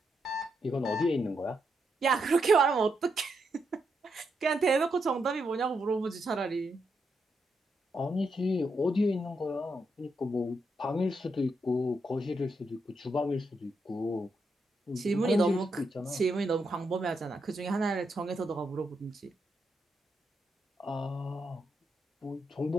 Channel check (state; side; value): normal; both; correlation 0.81